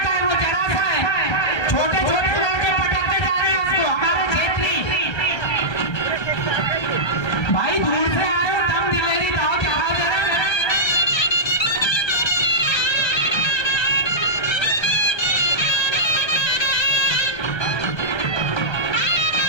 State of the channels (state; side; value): late; right; 1.3 ms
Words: है, वो जरा सा है, छोटे छोटे लड़के पटकते जा रहे हैं उसको, हमारे क्षेत्रीय। भाई दूर से आए हो, दम दिलेरी दाव चढ़ाओ जरा।